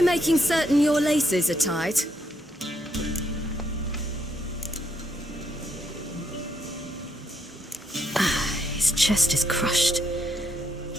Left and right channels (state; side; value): normal; both; correlation 0.75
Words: making certain your laces are tied? His chest is crushed.